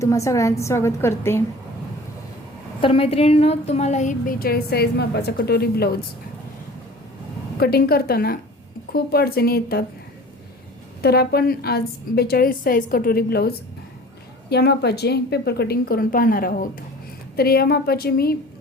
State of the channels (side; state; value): both; normal; correlation 0.43